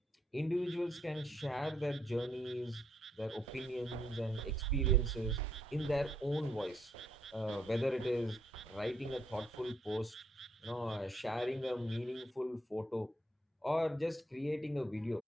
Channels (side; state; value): both; normal; correlation 0.73